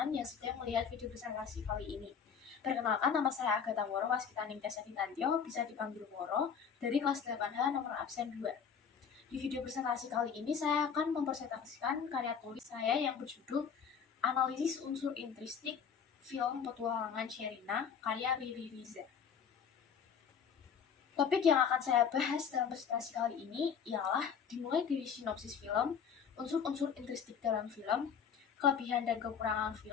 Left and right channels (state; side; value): quieter; right; 7.0 dB